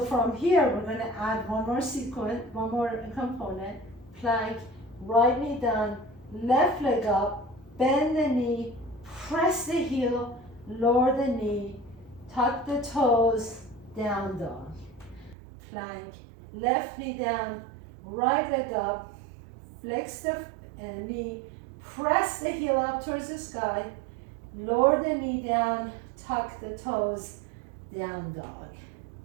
from here, we're going to add one more sequence, one more component. Plank, right knee down, left leg up, bend the knee, press the heel, lower the knee, tuck the toes, down dog. Plank, left knee down, right leg up, flex the knee, press the heel up towards the sky, lower the knee down, tuck the toes, down dog.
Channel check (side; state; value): left; drops out; at 15.4 s